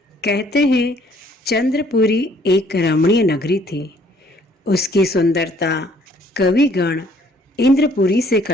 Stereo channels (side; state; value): both; normal; correlation 0.61